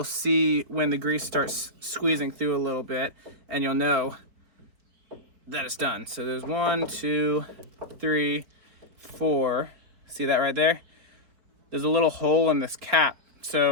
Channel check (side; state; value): left; late; 4.6 ms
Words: see when the grease starts squeezing through a little bit, and you'll know that it's done. So there's 1, 2, 3, 4. See that right there? There's a little hole in this cap,